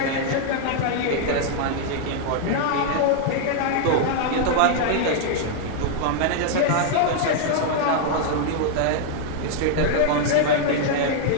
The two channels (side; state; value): both; different; correlation 0.00